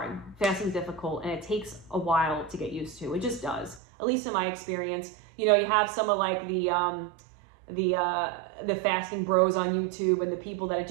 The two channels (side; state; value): left; drops out; at 3.8 s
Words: fasting's difficult, and it takes a while to get used to. It just does. At least in my experience, you know, you have some of like the fasting bros on YouTube and the people that it